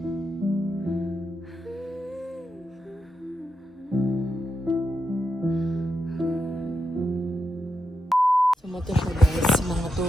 Sumato siya guys, mga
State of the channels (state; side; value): normal; both; correlation 0.85